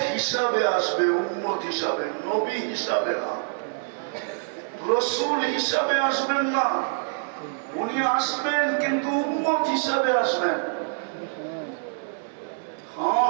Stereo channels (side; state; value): left; silent; digital silence